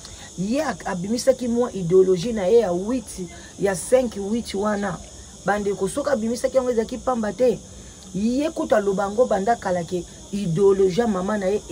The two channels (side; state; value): both; identical; correlation 1.00